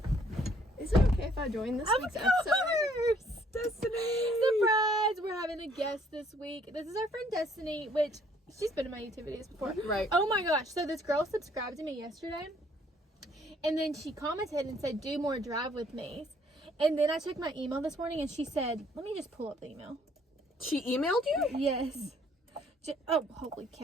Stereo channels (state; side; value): normal; both; correlation 0.63